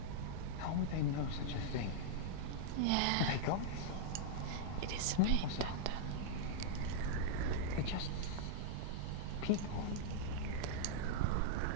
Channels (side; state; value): both; different; correlation -0.02